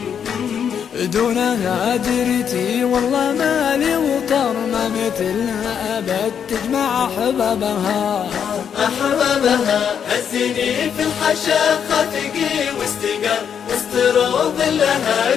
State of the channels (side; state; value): right; quieter; 7.9 dB